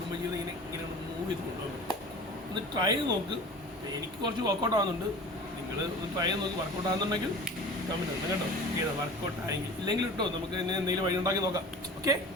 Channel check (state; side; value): normal; both; correlation 0.39